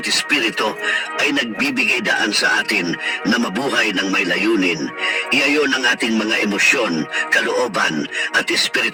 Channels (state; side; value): identical; both; correlation 1.00